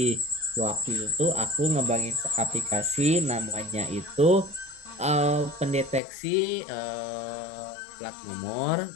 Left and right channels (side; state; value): right; drops out; at 6.0 s